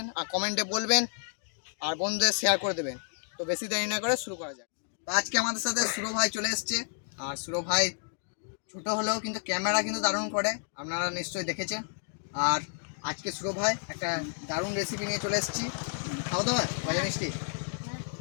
আর কমেন্টে বলবেন আর বন্ধুদের শেয়ার করে দেবেন। তো বেশি দেরি না করে শুরু করা যাক। তো আজকে আমাদের সাথে সুরো ভাই চলে এসছে। আর সুরো ভাই ছোটো হলেও কিন্তু ক্যামেরা কিন্তু দারুণ করে, আপনারা নিশ্চয়ই দেখেছেন। আর আজকে সুরো ভাই একটা দারুণ রেসিপি নিয়ে চলে এসেছি, খাওয়া দাওয়া গজা মিষ্টি।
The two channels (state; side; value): silent; right; digital silence